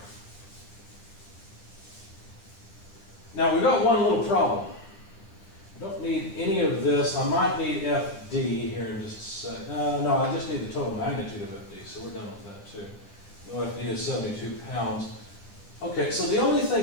Now, we've got one little problem. I don't need any of this. I might need FD here in just a sec. No, I just need the total magnitude of FD, so we're done with that too. No, FD is 72 pounds. Okay, so the only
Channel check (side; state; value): right; late; 10 ms